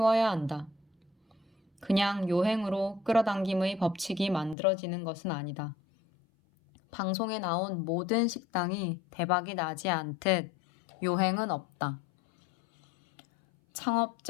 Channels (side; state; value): right; drops out; at 4.5 s